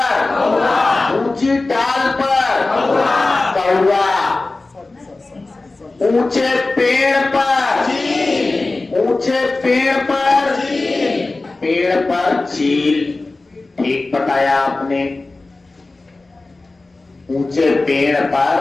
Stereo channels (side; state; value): right; quieter; 3.3 dB